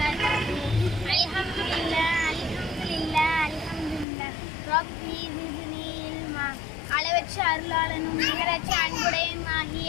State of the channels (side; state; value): right; drops out; at 4.0 s